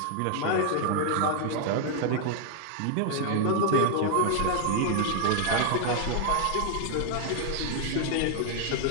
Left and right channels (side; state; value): both; different; correlation 0.00